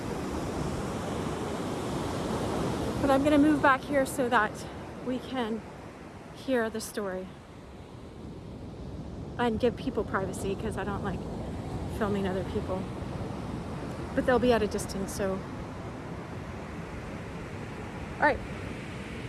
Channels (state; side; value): identical; both; correlation 1.00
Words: But I'm gonna move back here so that we can hear the story. And give people privacy because I don't like filming other people. But they'll be at a distance, so. All right.